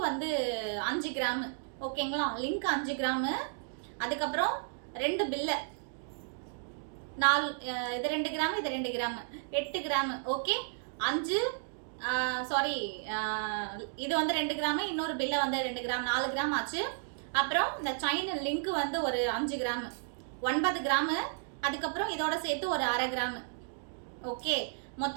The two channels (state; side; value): silent; left; digital silence